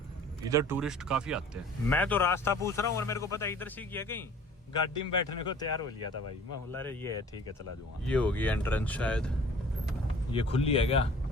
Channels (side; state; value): both; normal; correlation 0.48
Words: इधर टूरिस्ट काफी आते हैं। मैं तो रास्ता पूछ रहा हूँ और मेरे को पता है इधर सीख है। कहीं गाड़ी में बैठने को तैयार हो लिया था भाई। मैं बोला रे ये है, ठीक है चला जाऊंगा। ये होगी एंट्रेंस शायद, ये खुली है क्या?